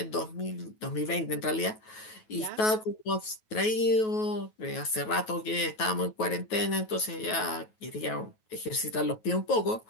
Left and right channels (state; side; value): late; right; 9.3 ms